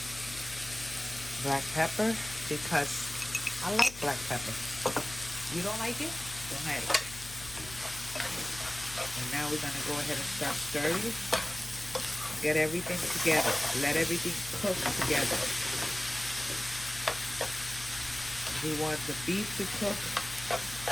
black pepper, because I like black pepper. You don't like it? Don't add it. And now we're going to go ahead and start stirring. Get everything together. Let everything cook together. We want the beef to cook.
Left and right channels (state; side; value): noise; left; hum, 15 dB below the sound